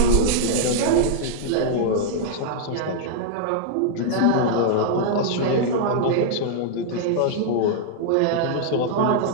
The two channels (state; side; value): different; both; correlation -0.01